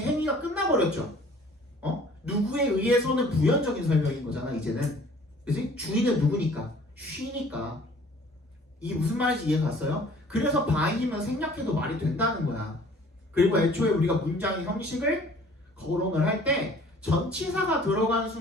행위가 끝나버렸죠. 누구에 의해서는 부연적인 설명인 거잖아 이제는. 그치? 주인은 누구니까? she니까. 이게 무슨 말인지 이해 갔어요? 그래서 by이면 생략해도 말이 된다는 거야. 그리고 애초에 우리가 문장의 형식을 거론을 할 때 전치사가 들어가는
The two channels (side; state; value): both; normal; correlation 0.52